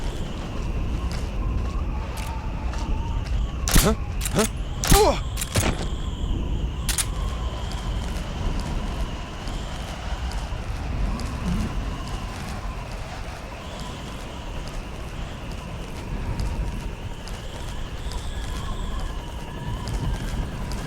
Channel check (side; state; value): both; identical; correlation 1.00